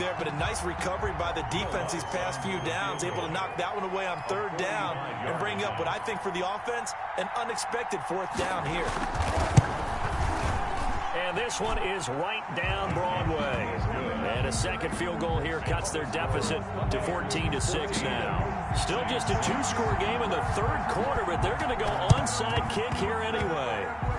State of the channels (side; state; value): both; identical; correlation 1.00